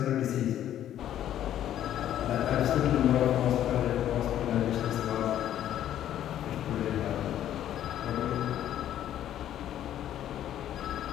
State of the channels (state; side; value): quieter; right; 11.4 dB